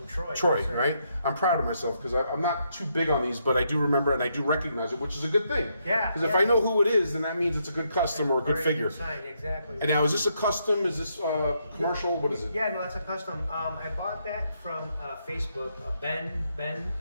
Troy. Troy, right? I'm proud of myself because I'm not too big on these, but I do remember it and I do recognize it, which is a good thing. Yeah. Because if I know who it is, then that means it's a good custom or a good figure. Exactly. And now, is this a custom? Is this commercial? What is it? Yeah, no, that's a custom. I bought that from Facebook. Ben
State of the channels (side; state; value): both; inverted; correlation -0.77